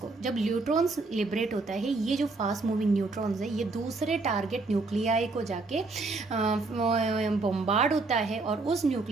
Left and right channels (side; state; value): left; quieter; 3.6 dB